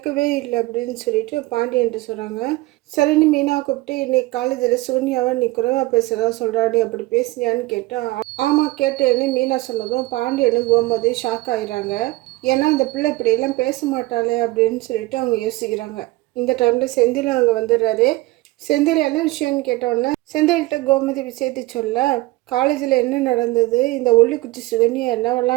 இல்லை அப்படின்னு சொல்லிட்டு பாண்டியன்ட்டு சொல்கிறாங்க. சரின்னு மீனா கூப்பிட்டு, இன்னைக்கு காலேஜில் சூன்யாவை நீ குறைவாக பேசுகிறதா சொல்கிறாடி, அப்படி பேசுனியான்னு கேட்டால் ஆமாம் கேட்டேன்னு மீனா சொன்னதும் பாண்டியனும் கோமதி ஷாக் ஆயிடுறாங்க. ஏன்னா இந்த பிள்ளை இப்படியெல்லாம் பேச மாட்டாளே அப்படின்னு சொல்லிட்டு அவங்க யோசிக்கிறாங்க. இந்த டைமில் செந்தில் அங்கே வந்துடுறாரு. செந்தில் என்ன விஷயம்னு கேட்டோன்னே செந்தில்கிட்ட கோமதி விஷயத்தை சொல்ல, காலேஜில் என்ன நடந்தது, இந்த ஒல்லிக்குச்சி சுகன்யா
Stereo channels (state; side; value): quieter; left; 20.1 dB